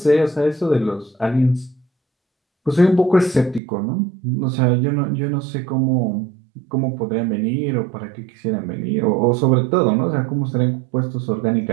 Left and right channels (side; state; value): left; drops out; at 3.6 s